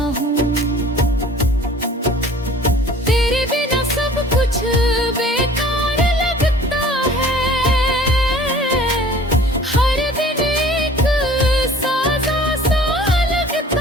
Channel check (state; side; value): normal; both; correlation 0.49